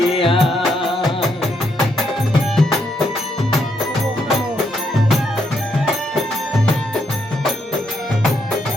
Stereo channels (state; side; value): normal; both; correlation 0.76